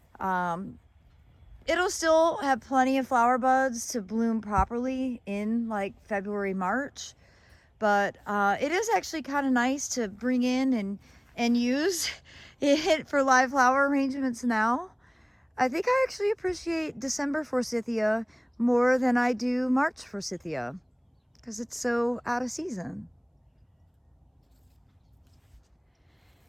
It'll still have plenty of flower buds to bloom properly in like February, March. But it is actually kind of nice to bring in and use it for live flower arrangements now. I think I actually appreciate December forsythia more than I do March forsythia because it's so out of season.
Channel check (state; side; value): identical; both; correlation 1.00